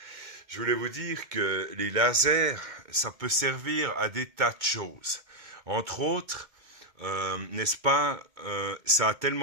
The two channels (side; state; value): left; late; 2.2 ms